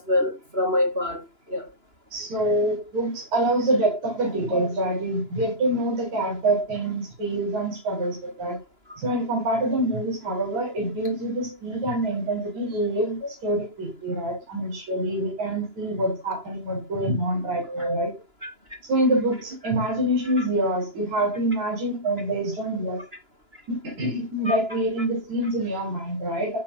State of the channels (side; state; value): left; late; 2.9 ms